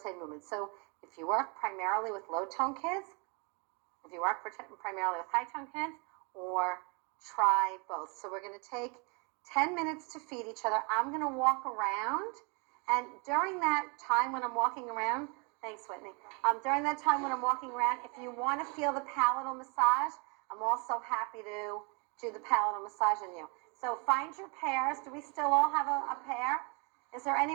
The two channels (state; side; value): quieter; left; 32.7 dB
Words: movements. So if you work primarily with low-tone kids, if you work primarily with high-tone kids, or try both. So we're going to take 10 minutes to feed each other. I'm going to walk around, and during that time when I'm walking around, thanks, Whitney. During that time when I'm walking around, if you want to feel the palatal massage, I'm also happy to do the palatal massage on you. So find your pairs. Do we still all have a pair? Is there